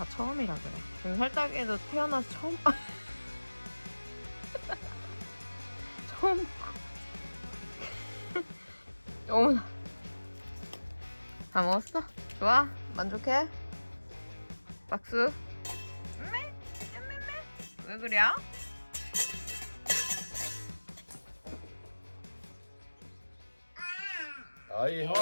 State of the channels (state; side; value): inverted; both; correlation -1.00